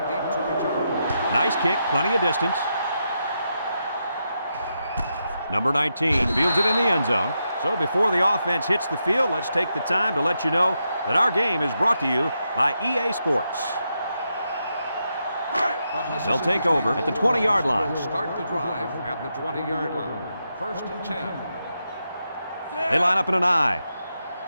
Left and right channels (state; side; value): inverted; both; correlation -0.84